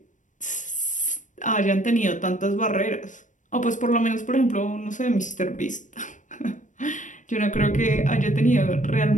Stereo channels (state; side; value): late; right; 0.37 ms